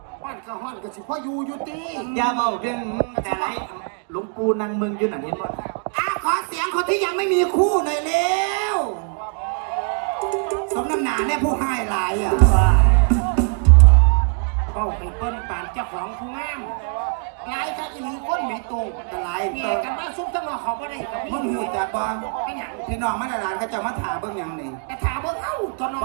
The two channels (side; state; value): left; quieter; 39.7 dB